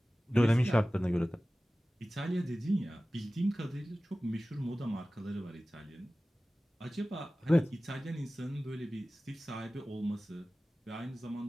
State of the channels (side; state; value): both; normal; correlation 0.97